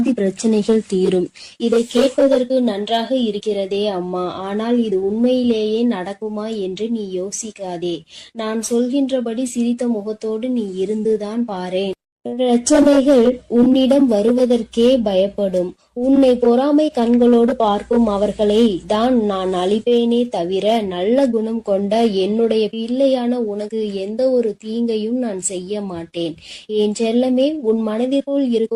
பிரச்சனைகள் தீரும். இதை கேட்பதற்கு நன்றாக இருக்கிறதே அம்மா, ஆனால் இது உண்மையிலேயே நடக்குமா என்று நீ யோசிக்காதே. நான் சொல்கின்றபடி சிரித்த முகத்தோடு நீ இருந்துதான் பாரேன். பிரச்சனைகள் உன்னிடம் வருவதற்கே பயப்படும். உன்னை பொறாமை கண்களோடு பார்க்கும் அவர்களை தான் நான் அழிப்பேனே தவிர நல்ல குணம் கொண்ட என்னுடைய பிள்ளையான உனக்கு எந்த ஒரு தீங்கையும் நான் செய்ய மாட்டேன். என் செல்லமே, உன் மனதிற்குள்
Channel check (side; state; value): both; identical; correlation 1.00